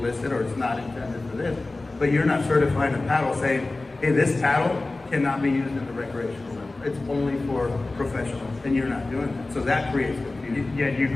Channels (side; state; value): right; quieter; 3.1 dB